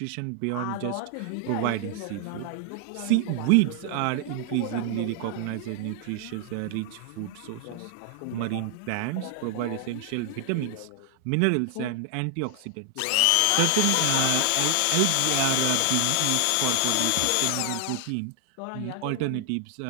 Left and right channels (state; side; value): different; both; correlation 0.00